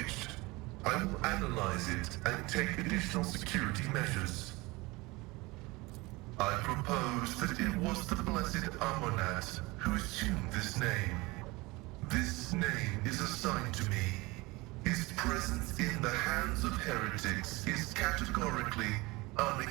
I will analyze it and take additional security measures. I propose that it was the Blessed Amonat who assumed this name. This name is assigned to me. His presence in the hands of heretics is categorically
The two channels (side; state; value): left; quieter; 23.1 dB